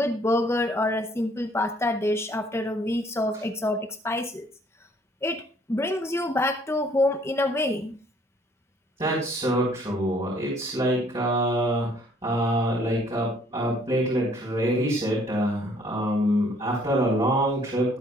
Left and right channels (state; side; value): normal; both; correlation 0.61